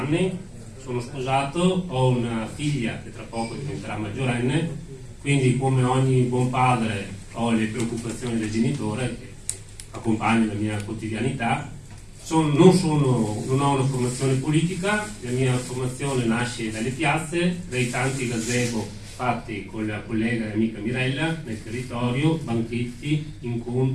sono sposato, ho una figlia che tra poco diventerà maggiorenne, quindi come ogni buon padre ho le preoccupazioni del genitore che accompagnano la mia quotidianità. Non ho una formazione politica, la mia formazione nasce dalle piazze, dai tanti gazebo fatti con la collega e amica Mirella nel territorio, banchetti,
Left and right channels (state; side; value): identical; both; correlation 1.00